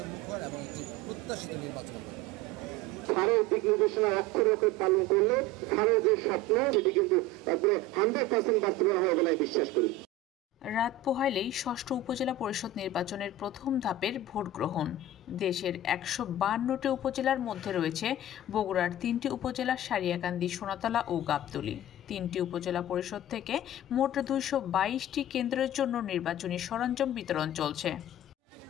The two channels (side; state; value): both; normal; correlation 0.32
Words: এবং একটি প্রত্যাশিত নির্বাচন হবে। স্যারের দিক নির্দেশনা অক্ষরে অক্ষরে পালন করলে স্যারের যে স্বপ্ন সেটি কিন্তু একবারে 100% বাস্তবায়ন হবে বলে বিশ্বাস করি। রাত পোহাইলেই ষষ্ঠ উপজেলা পরিষদ নির্বাচনের প্রথম ধাপের ভোট গ্রহণ। দেশের 152টি উপজেলার মধ্যে রয়েছে বগুড়ার 3টি উপজেলা সারিয়াকান্দি, সোনাতলা ও গাবতলী। 3টি উপজেলা পরিষদ থেকে মোট 222টি কেন্দ্রের জন্য নির্বাচনী সরঞ্জাম বিতরণ চলছে।